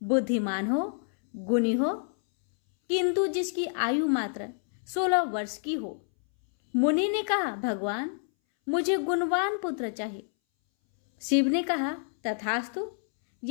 बुद्धिमान हो, गुणी हो, किंतु जिसकी आयु मात्र 16 वर्ष की हो। मुनि ने कहा, भगवान, मुझे गुणवान पुत्र चाहिए। शिव ने कहा, तथास्तु।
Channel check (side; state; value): right; silent; 59 dB below the other